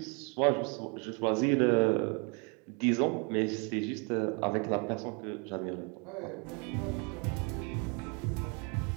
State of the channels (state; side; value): quieter; left; 33.5 dB